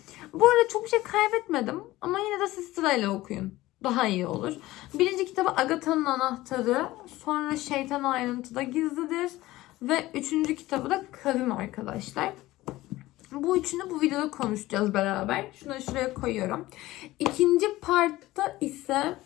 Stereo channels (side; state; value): right; quieter; 17.5 dB